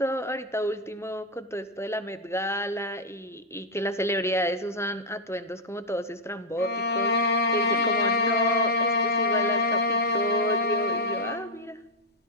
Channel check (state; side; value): normal; both; correlation -0.02